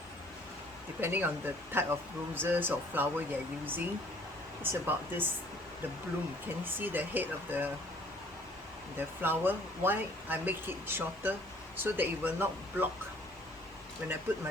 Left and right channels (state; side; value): normal; both; correlation 0.57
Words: depending on the type of roses or flower you're using, it's about this, the bloom. Can you see the head of the flower? Why I make it shorter? so that it will not block. When I put my